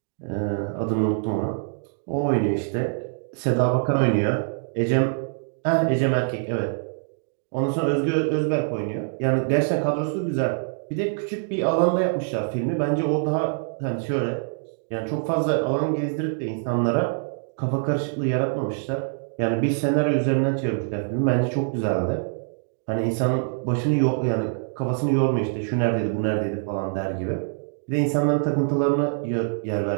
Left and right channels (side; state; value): left; silent; digital silence